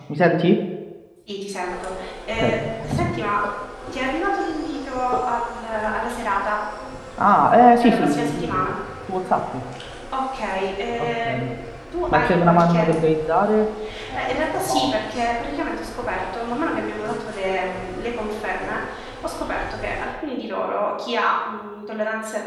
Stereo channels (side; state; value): both; identical; correlation 1.00